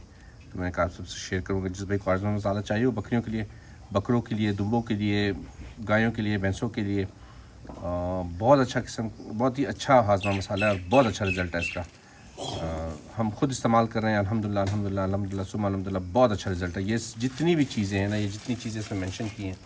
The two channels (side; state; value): both; identical; correlation 1.00